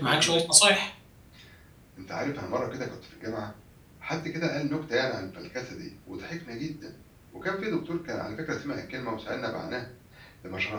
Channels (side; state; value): both; identical; correlation 1.00